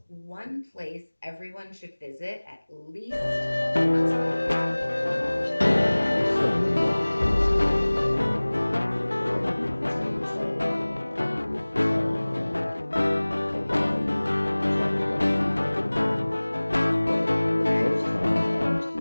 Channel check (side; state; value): both; inverted; correlation -1.00